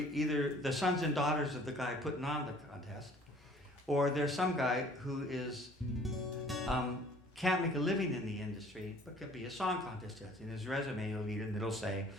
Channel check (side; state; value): both; normal; correlation 0.53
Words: the sons and daughters of the guy putting on the contest, or there's some guy who is can't make a living in the industry, but could be a song contest judge. In his resume, you'll read it and it'll say,